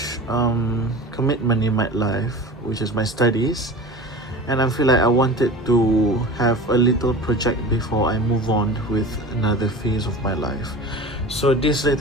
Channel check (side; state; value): both; normal; correlation 0.34